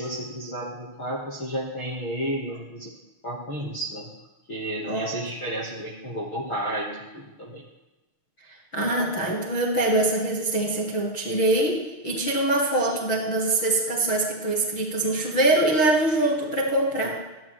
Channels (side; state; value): right; late; 6.5 ms